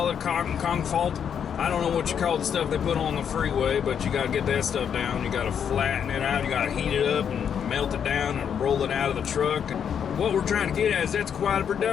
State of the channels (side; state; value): right; quieter; 8.0 dB